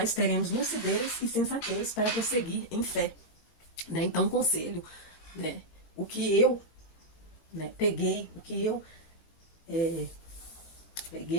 teremos lucidez e sensatez para prosseguir em fé. né? Então, um conselho, né? O que eu, né, peguei, o que eu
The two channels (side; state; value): right; late; 17 ms